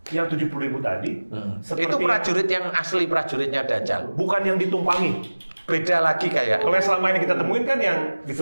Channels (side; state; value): both; inverted; correlation -1.00